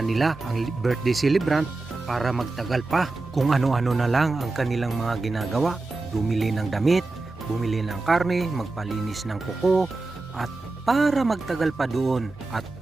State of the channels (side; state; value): left; quieter; 3.3 dB